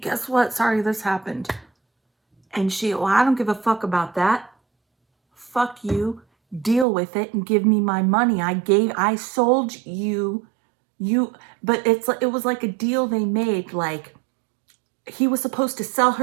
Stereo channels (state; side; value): drops out; left; at 6.9 s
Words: what? Sorry, this happened. And well, I don't give a fuck about that. Fuck you. Deal with it and give me my money. I sold you, but it was like a deal they made. Like, he was supposed to sell